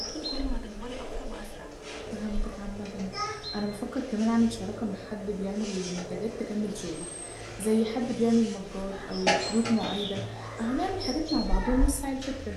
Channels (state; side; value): identical; both; correlation 1.00